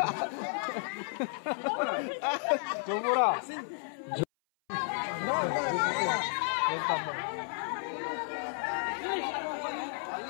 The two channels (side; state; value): right; silent; 56 dB below the other